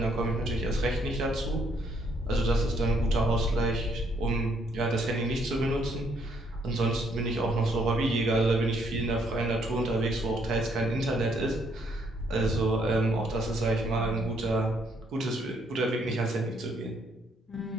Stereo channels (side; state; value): both; normal; correlation 0.70